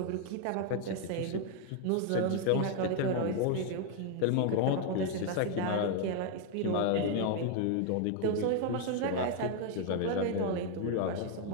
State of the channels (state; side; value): different; both; correlation 0.00